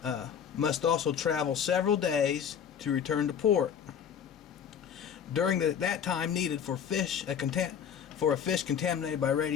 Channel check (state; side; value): quieter; right; 8.1 dB